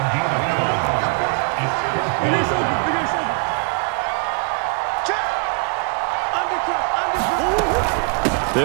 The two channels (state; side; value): quieter; left; 32.9 dB